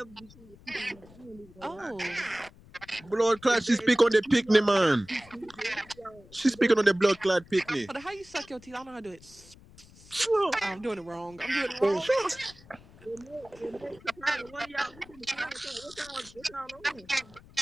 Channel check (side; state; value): left; noise; rumble, 23 dB below the sound